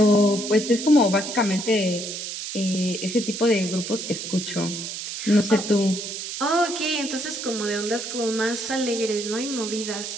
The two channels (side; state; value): right; noise; hiss, 7 dB below the sound